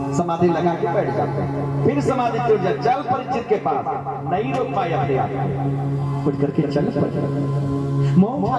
समाधि लगा के बैठ जाते हैं, फिर समाधि टूट जाए, चल परीक्षित के पास। नहीं रोक पाए अपने आप, उठ करके चल पड़े। मोह उठा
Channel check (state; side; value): identical; both; correlation 1.00